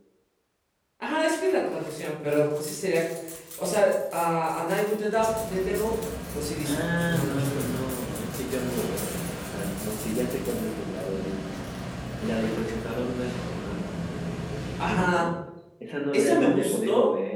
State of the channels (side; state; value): both; identical; correlation 1.00